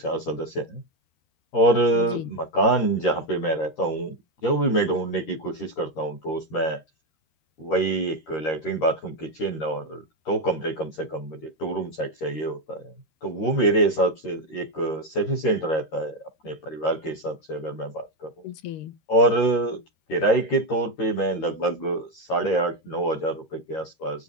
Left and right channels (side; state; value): right; late; 13 ms